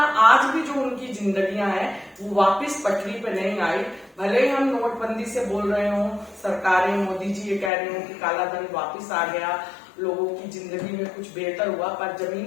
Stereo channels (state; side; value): drops out; right; at 7.7 s